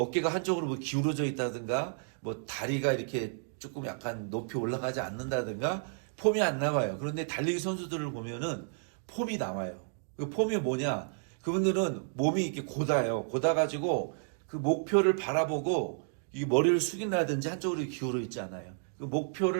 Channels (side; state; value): left; silent; digital silence